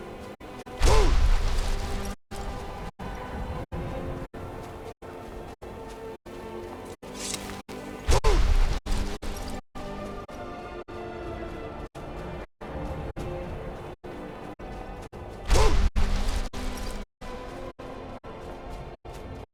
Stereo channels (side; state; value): both; identical; correlation 1.00